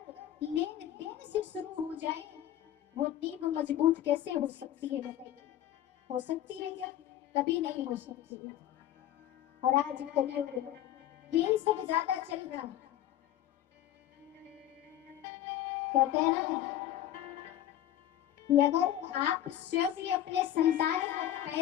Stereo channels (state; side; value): quieter; right; 12.0 dB